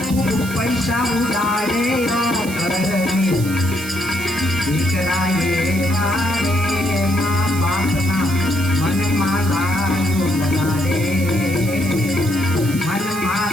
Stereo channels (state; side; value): noise; right; hiss, 12 dB below the sound